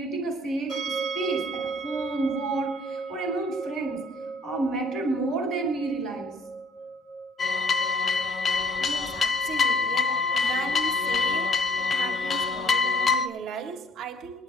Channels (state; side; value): normal; both; correlation 0.60